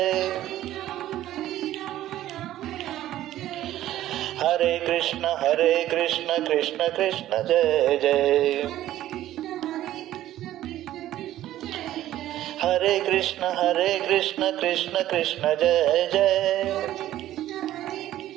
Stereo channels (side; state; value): left; quieter; 13.6 dB